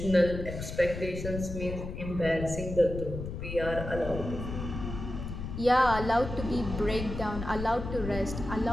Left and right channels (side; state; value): left; noise; rumble, 7 dB below the sound